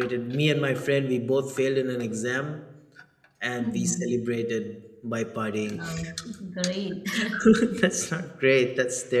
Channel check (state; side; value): identical; both; correlation 1.00